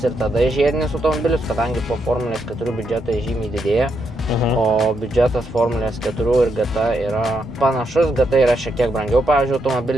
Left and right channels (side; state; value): both; normal; correlation 0.79